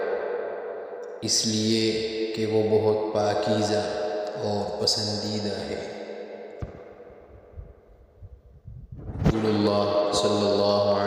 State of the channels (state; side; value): identical; both; correlation 1.00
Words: اس لیے کہ وہ بہت پاکیزہ اور پسندیدہ ہے۔ رسول اللہ صلی اللہ